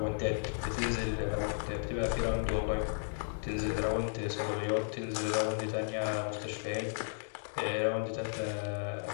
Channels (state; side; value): silent; right; digital silence